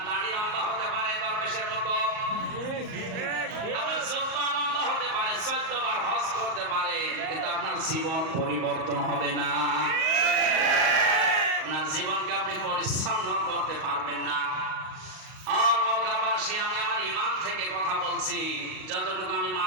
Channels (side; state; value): left; late; 38 ms